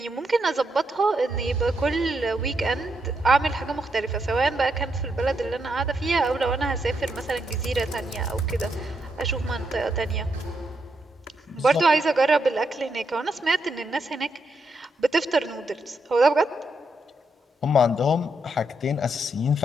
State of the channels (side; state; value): both; normal; correlation 0.80